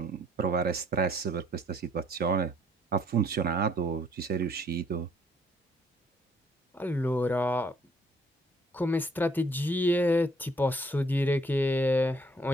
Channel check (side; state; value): both; normal; correlation 0.63